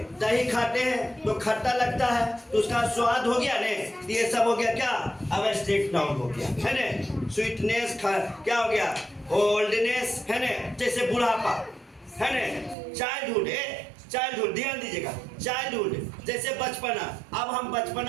दही खाते हैं तो खट्टा लगता है, तो उसका स्वाद हो गया ने। ये सब हो गया क्या, अब एब्स्ट्रैक्ट नाउन हो गया है ने। स्वीटनेस क्या हो गया, ओल्डनेस है ने, जैसे बुढ़ापा है ने। चाइल्डहुड ध्यान दीजिएगा, चाइल्डहुड जैसे बचपना, अब हम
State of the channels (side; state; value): left; drops out; at 12.8 s